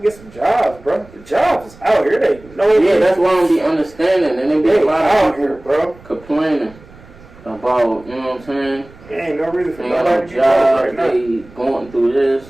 some jobs, bro. The jobs is out here. They know. Yeah, that's why I don't be understanding. And then be a lot of people here, bro, complaining about, you know what I'm saying? There ain't no reason for they nobody to be job, right now. They going through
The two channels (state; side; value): noise; right; rumble, 23 dB below the sound